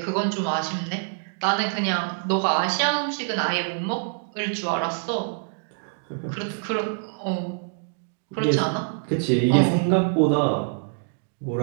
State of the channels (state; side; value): silent; left; digital silence